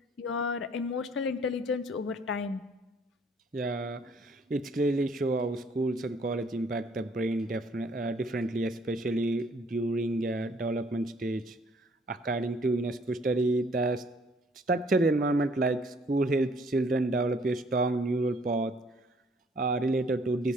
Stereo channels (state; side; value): normal; both; correlation 0.61